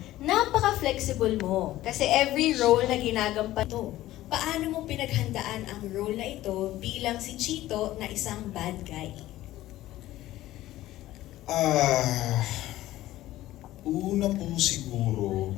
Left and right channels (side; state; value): right; quieter; 15.3 dB